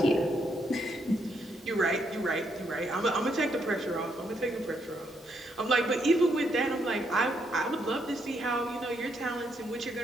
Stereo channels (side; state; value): both; normal; correlation 0.75